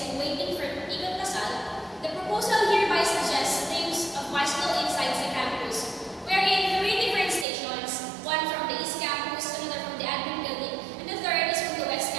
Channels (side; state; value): left; drops out; at 7.5 s